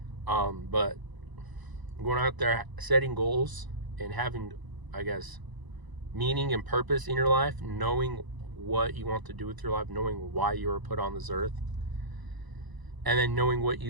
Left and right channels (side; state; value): left; late; 1.0 ms